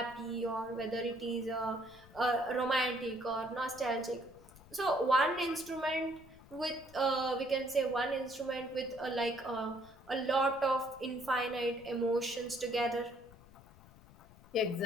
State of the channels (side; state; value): left; noise; rumble, 22 dB below the sound